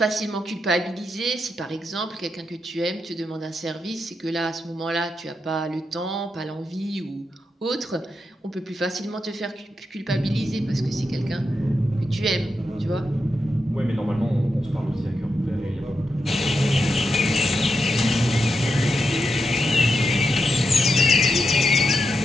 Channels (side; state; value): both; normal; correlation 0.85